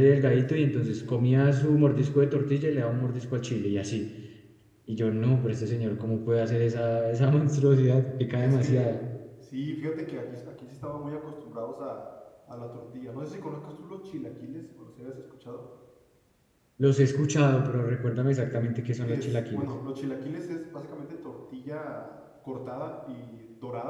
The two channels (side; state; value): both; identical; correlation 1.00